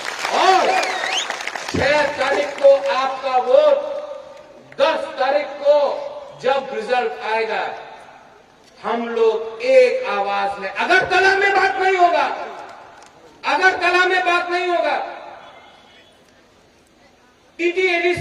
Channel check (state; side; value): identical; both; correlation 1.00